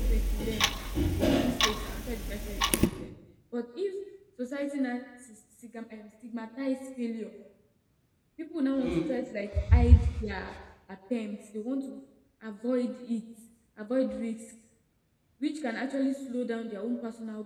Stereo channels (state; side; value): identical; both; correlation 1.00